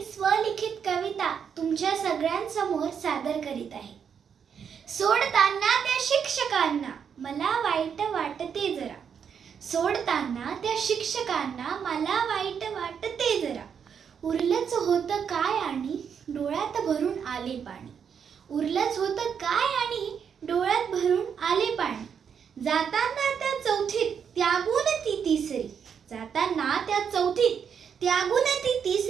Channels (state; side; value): quieter; left; 7.3 dB